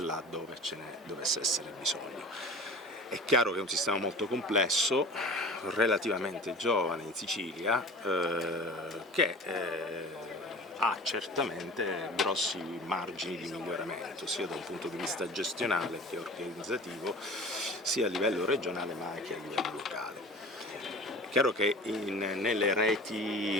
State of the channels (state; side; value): normal; both; correlation 0.39